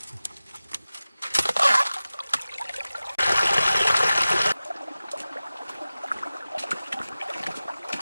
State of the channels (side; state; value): both; inverted; correlation -0.95